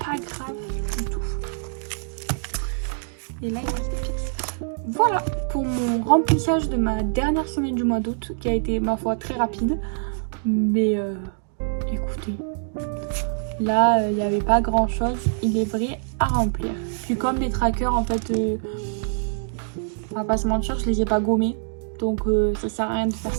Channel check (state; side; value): silent; left; digital silence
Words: grave du tout. Et là, il reste des pièces. Voilà pour mon remplissage de ma dernière semaine du mois d'août, qui a été, ma foi, très rapide. Mais écoutez, là, il n'y avait pas grand chose, il est vrai, à remplir. Puis comme mes trackers, en fait, on va pas se mentir, je les ai pas gommés. Donc ça sert à rien de faire